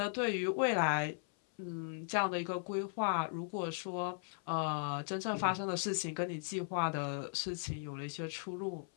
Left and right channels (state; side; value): silent; right; 53 dB below the other